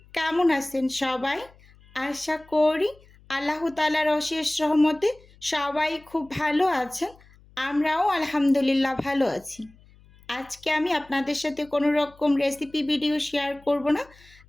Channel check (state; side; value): noise; left; hum, 27 dB below the sound